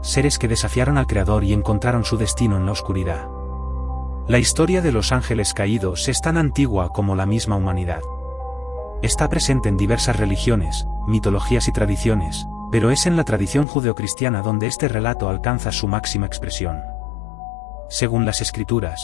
seres que desafiaron al Creador y encontraron su destino en la oscuridad. La historia de los ángeles caídos es tan antigua como la misma humanidad. Está presente en diversas religiones, mitologías y tradiciones, pero es en la tradición judeocristiana donde este relato alcanza su máxima expresión. Según las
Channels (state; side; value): drops out; right; at 13.7 s